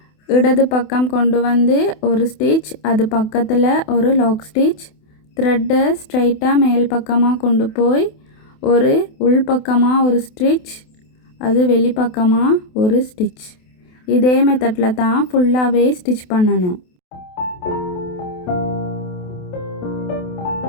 இடது பக்கம் கொண்டு வந்து ஒரு ஸ்டிச், அது பக்கத்தில் ஒரு லாக் ஸ்டிச், த்ரெட்டை ஸ்ட்ரைட்டாக மேல் பக்கமாக கொண்டு போய் ஒரு உள் பக்கமாக ஒரு ஸ்டிச், அது வெளிப்பக்கமாக ஒரு ஸ்டிச். இதே மெத்தடில் தான் ஃபுல்லாகவே ஸ்டிச் பண்ணணும்.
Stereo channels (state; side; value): late; right; 28 ms